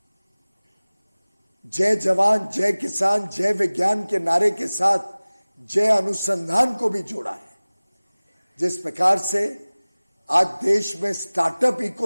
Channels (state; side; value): inverted; both; correlation -0.99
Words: जय जवान, जय किसान, जय विज्ञान के नारे के साथ जय अनुसंधान को भी जोड़ा है। जिस प्रकार से आज देश में स्टार्टअप